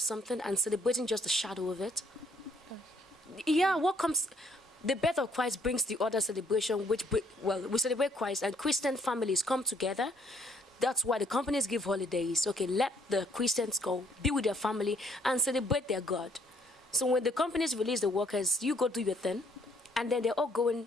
something and celebrating just the shadow of it. Yeah, what comes... The birth of Christ brings the other celebration, we celebrate Christ, and Christian families come together. That's why the companies give holidays. Okay, let the Christians go, be with their family, and celebrate their God. So when the companies release the workers, you go do your thing, and then they're all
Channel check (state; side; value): normal; both; correlation 0.64